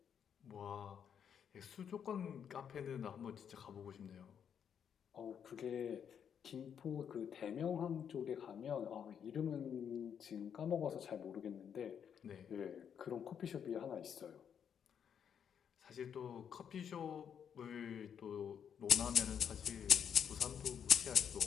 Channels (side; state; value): right; quieter; 8.0 dB